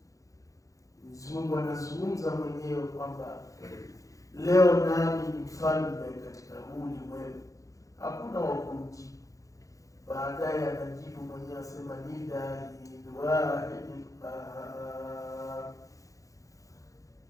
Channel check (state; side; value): late; right; 0.16 ms